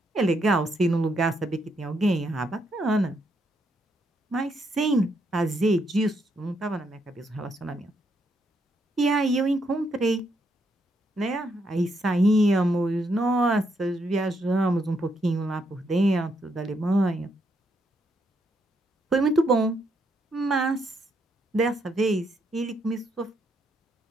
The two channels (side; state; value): both; normal; correlation 0.77